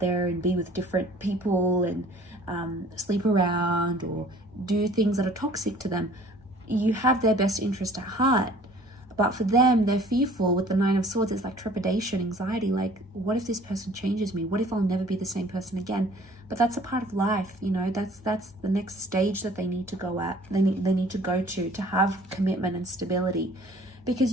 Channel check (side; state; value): both; normal; correlation 0.52